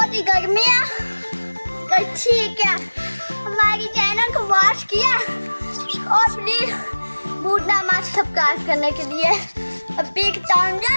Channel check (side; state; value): both; inverted; correlation -1.00